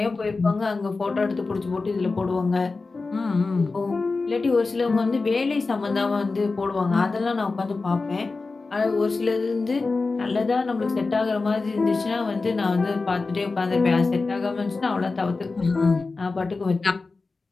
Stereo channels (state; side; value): quieter; right; 3.9 dB